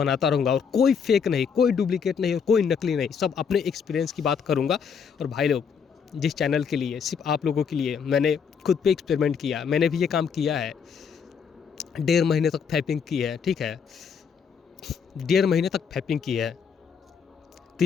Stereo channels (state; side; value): quieter; right; 6.6 dB